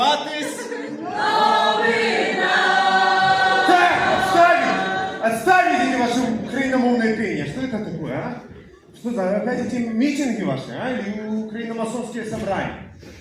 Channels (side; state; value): both; identical; correlation 1.00